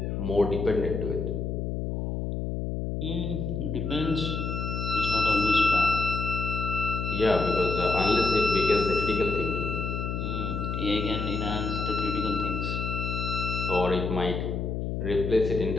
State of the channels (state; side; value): noise; left; hum, 2 dB below the sound